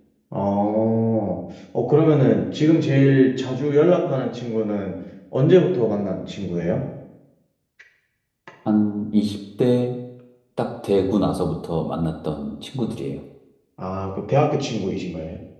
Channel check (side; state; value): both; identical; correlation 1.00